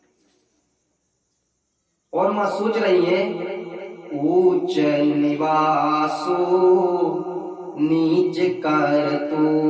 और मां सोच रही है, ऊंच निवासो नीच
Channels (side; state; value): both; identical; correlation 1.00